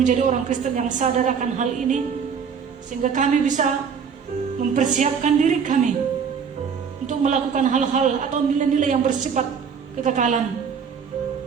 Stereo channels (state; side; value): quieter; left; 6.6 dB